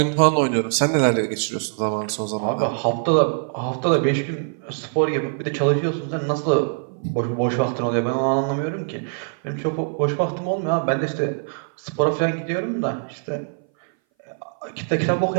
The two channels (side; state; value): left; silent; 59 dB below the other